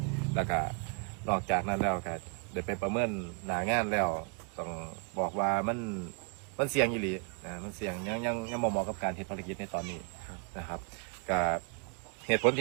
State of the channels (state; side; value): quieter; left; 37.2 dB